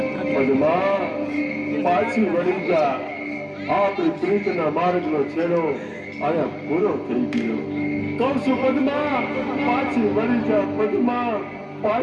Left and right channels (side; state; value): both; identical; correlation 1.00